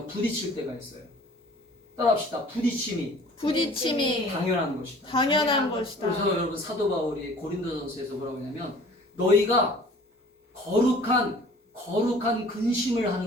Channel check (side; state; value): both; normal; correlation 0.49